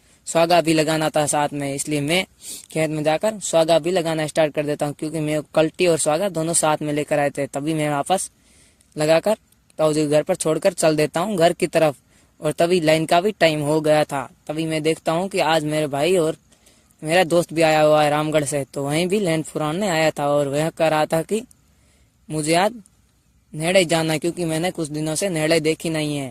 स्वागा भी लगाना था साथ में। इसलिए मैं खेत में जाकर स्वागा भी लगाना स्टार्ट कर देता हूँ, क्योंकि मैं कल्टी और स्वागा दोनों साथ में लेकर आए थे। तभी मैं वापस लगाकर ताऊ जी के घर पर छोड़कर चल देता हूँ घर की तरफ। और तभी लाइन का भी टाइम हो गया था। तभी मैं देखता हूँ कि आज मेरे भाई और मेरा दोस्त भी आया हुआ है रामगढ़ से, तो वहीं भी लैंड फुराने आया था और वह कह रहा था कि मुझे आज नेड़े जाना है, क्योंकि मैंने कुछ दिनों से नेड़े देखी नहीं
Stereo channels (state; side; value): identical; both; correlation 1.00